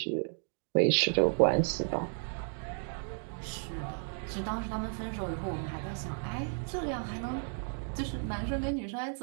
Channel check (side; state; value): left; silent; 56 dB below the other